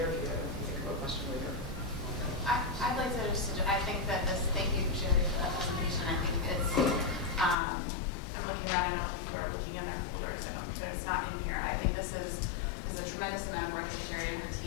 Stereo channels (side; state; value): right; drops out; at 7.6 s